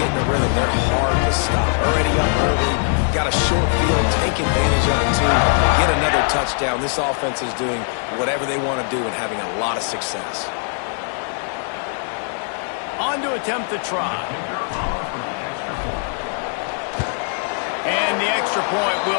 in a rhythm, they're hard to stop. Already up early, got a short field, take advantage of it too, get another touchdown. This offense is doing whatever they want to do and having a lot of success. On to attempt the try. And the extra point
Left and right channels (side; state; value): right; silent; 55 dB below the other